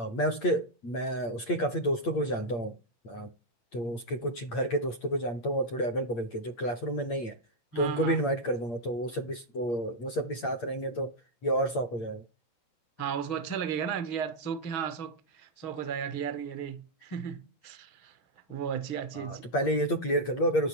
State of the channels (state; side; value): late; right; 8.6 ms